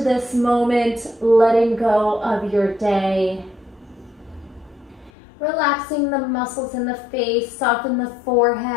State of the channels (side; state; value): right; drops out; at 5.1 s